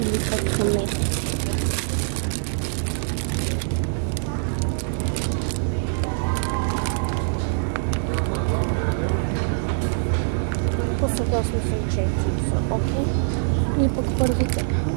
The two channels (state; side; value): silent; left; digital silence